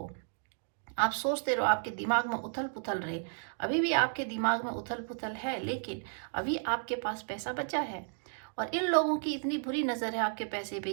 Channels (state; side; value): silent; left; digital silence